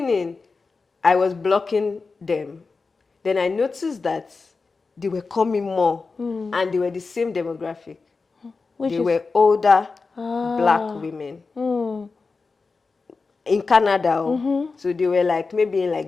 I was blocking them. Then I noticed that they were coming more and they were the same demographic. They were older black women in Canada. So they were like maybe in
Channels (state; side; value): quieter; right; 4.3 dB